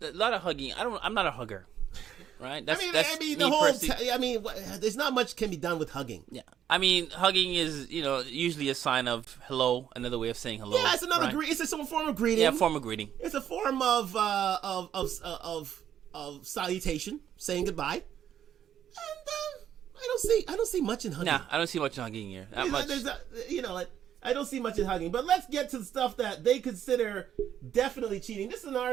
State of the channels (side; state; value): left; quieter; 9.9 dB